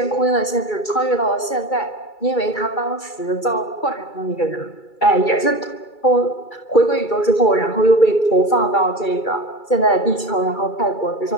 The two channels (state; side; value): late; right; 2.3 ms